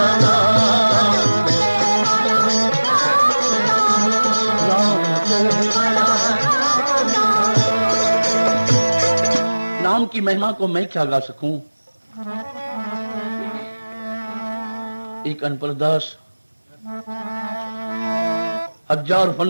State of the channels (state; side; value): inverted; both; correlation -1.00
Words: नाम की महिमा को मैं क्या गा सकूं? एक अनपरदास, हजार